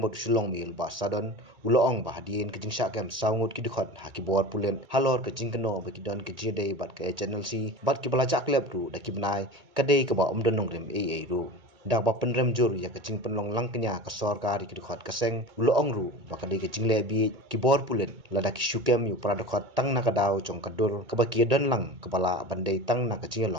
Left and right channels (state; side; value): late; left; 1.8 ms